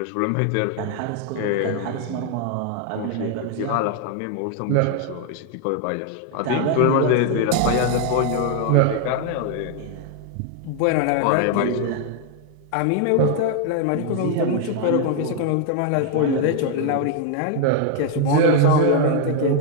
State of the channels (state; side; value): different; both; correlation 0.00